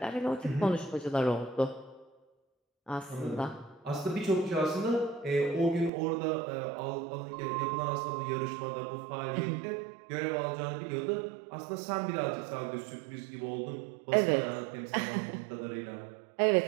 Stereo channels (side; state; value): left; drops out; at 5.9 s